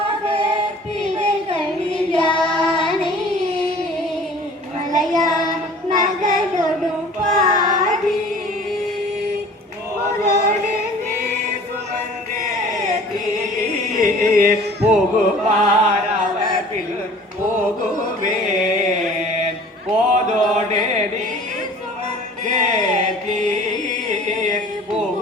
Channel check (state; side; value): normal; both; correlation 0.47